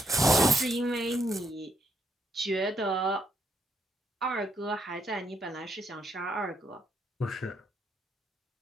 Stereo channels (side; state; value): both; normal; correlation 0.75